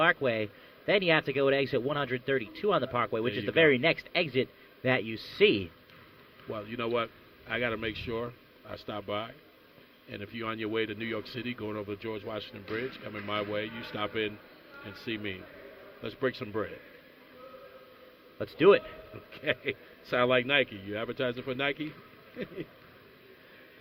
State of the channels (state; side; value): identical; both; correlation 1.00